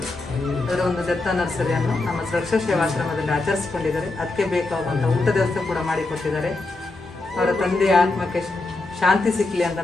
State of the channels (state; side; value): quieter; right; 3.2 dB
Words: ಅದರ ಒಂದು ದತ್ತ ನರ್ಸರಿಯನ್ನು ನಮ್ಮ ಸುರಕ್ಷಾ ಸೇವಾಶ್ರಮದಲ್ಲಿ ಆಚರಿಸಿಕೊಂಡಿದ್ದಾರೆ. ಅದಕ್ಕೆ ಬೇಕಾಗುವಂಥ ಊಟದ ವ್ಯವಸ್ಥೆ ಕೂಡ ಮಾಡಿಕೊಟ್ಟಿದ್ದಾರೆ. ಅವರ ತಂದೆಯ ಆತ್ಮಕ್ಕೆ ಶಾಂತಿ ಸಿಕ್ಕಲಿ ಅಂತ